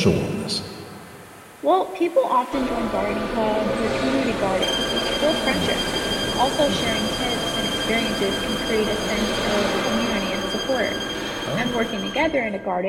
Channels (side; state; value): both; identical; correlation 1.00